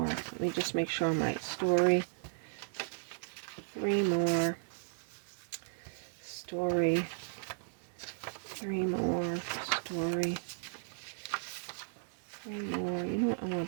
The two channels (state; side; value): silent; left; digital silence